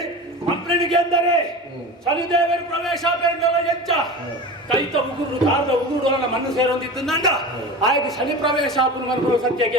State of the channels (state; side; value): normal; both; correlation 0.31